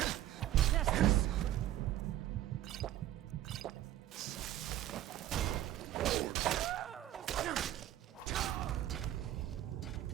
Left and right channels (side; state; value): left; quieter; 13.1 dB